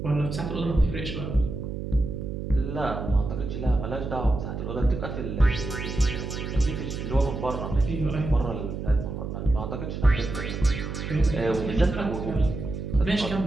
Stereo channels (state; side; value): noise; right; hum, 6 dB below the sound